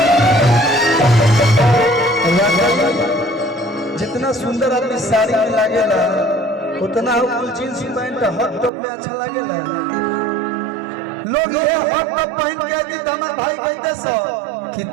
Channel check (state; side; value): drops out; left; at 8.7 s